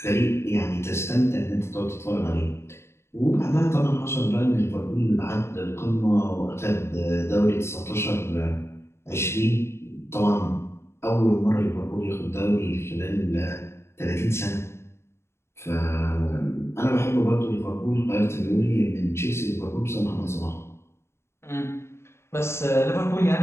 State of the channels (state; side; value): late; right; 0.13 ms